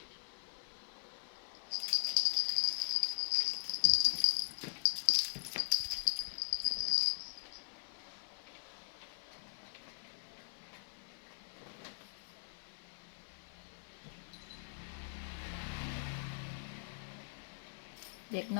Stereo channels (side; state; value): right; silent; 51 dB below the other